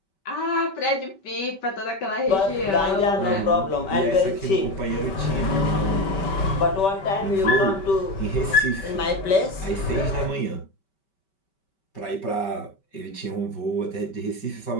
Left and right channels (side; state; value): right; late; 5.2 ms